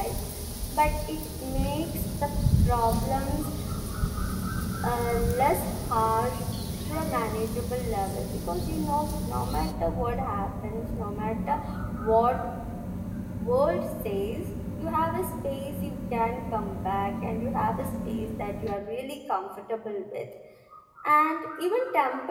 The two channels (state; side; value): identical; both; correlation 1.00